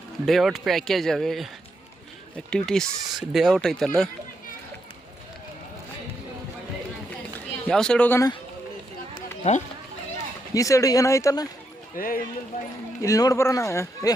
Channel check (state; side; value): normal; both; correlation 0.81